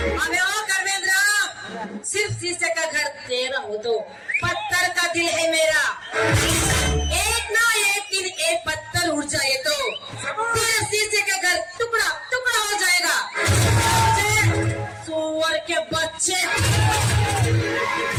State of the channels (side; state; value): both; identical; correlation 1.00